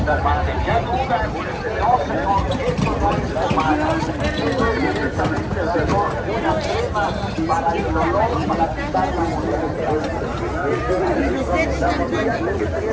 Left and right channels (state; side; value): identical; both; correlation 1.00